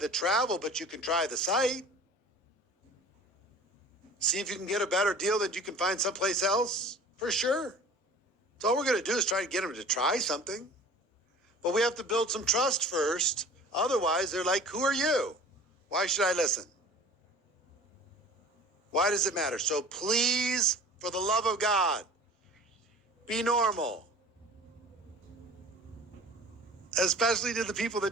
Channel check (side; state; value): both; normal; correlation 0.42